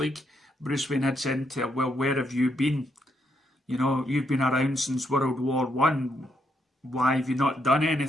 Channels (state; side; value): normal; both; correlation 0.78